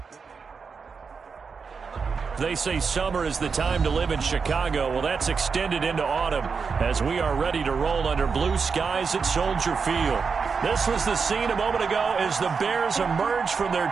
They say summer is the time to live in Chicago. Well, that's extended into autumn as we are ready to roll under blue skies at Soldier Field. This was the scene a moment ago as the Bears emerge from their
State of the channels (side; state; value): left; quieter; 5.4 dB